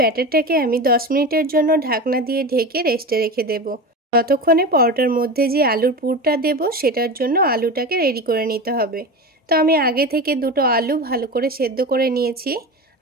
ব্যাটারটাকে আমি 10 মিনিটের জন্য ঢাকনা দিয়ে ঢেকে রেস্টে রেখে দেব। ততক্ষণে পরোটার মধ্যে যে আলুর পুরটা দেব সেটার জন্য আলুটাকে রেডি করে নিতে হবে। তো আমি আগে থেকে দুটো আলু ভালো করে সেদ্ধ করে নিয়েছি।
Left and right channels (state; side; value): normal; both; correlation 0.26